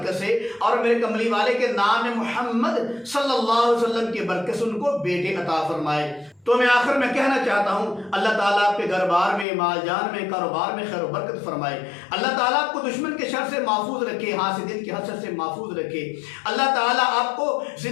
سے اور میرے کملی والے کے نام محمد صلی اللہ علیہ وسلم کی برکت سے ان کو بیٹے عطا فرمائے۔ تو میں آخر میں کہنا چاہتا ہوں، اللہ تعالیٰ آپ کے گھر بار میں، مال جان میں، کاروبار میں خیر و برکت فرمائے۔ اللہ تعالیٰ آپ کو دشمن کے شر سے محفوظ رکھے، حاسدین کے حسد سے محفوظ رکھے۔ اللہ تعالیٰ آپ کو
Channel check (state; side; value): drops out; right; at 9.5 s